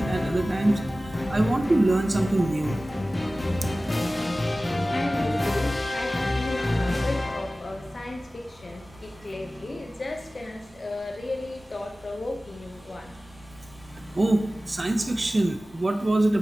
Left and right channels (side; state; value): both; normal; correlation 0.97